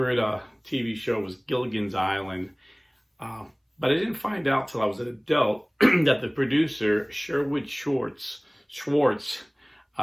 TV show was Gilligan's Island. Uh, but I didn't find out till I was an adult that the producer, Sherwood Schwartz,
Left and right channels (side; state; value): both; identical; correlation 1.00